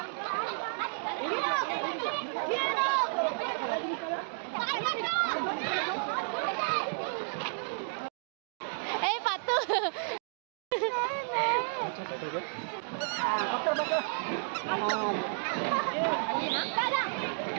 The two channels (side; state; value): left; silent; digital silence